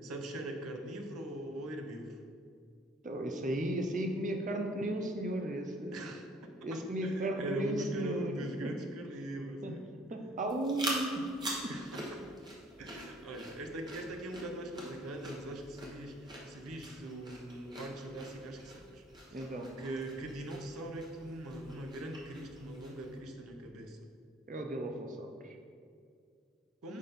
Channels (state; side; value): normal; both; correlation 0.57